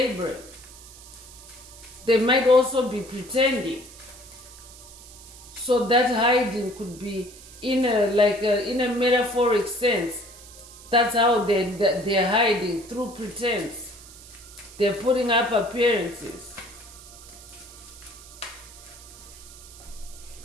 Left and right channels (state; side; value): noise; right; hiss, 18 dB below the sound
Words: They might also be pretending. So that hiding could be in a metaphoric sense. That's how they're hiding, through pretense. They're putting up appearances.